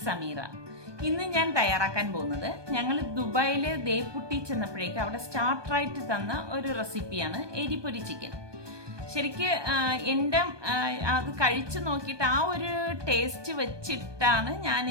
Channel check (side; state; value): left; late; 1.2 ms